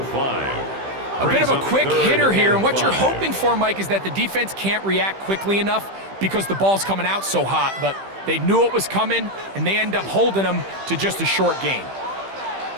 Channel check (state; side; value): late; left; 15 ms